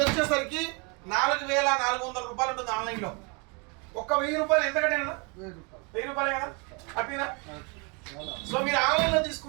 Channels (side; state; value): left; quieter; 32.0 dB